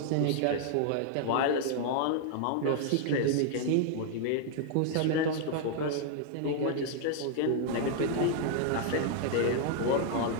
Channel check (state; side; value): different; both; correlation 0.00